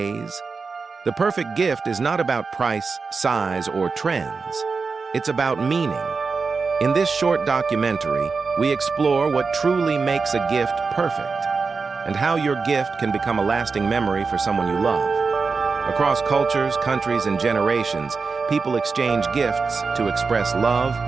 The perfect gift is not about price, size, or trends. It's about meaning. In this short documentary, we explore what truly makes a gift perfect and how your gift can become a lasting memory for someone you love. Across cultures, countries, and generations, people exchange gifts to express love,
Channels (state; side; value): quieter; left; 4.7 dB